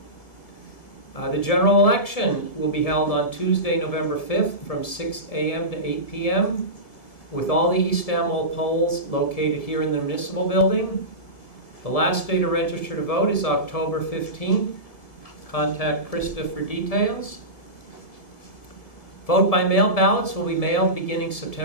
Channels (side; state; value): right; late; 1.7 ms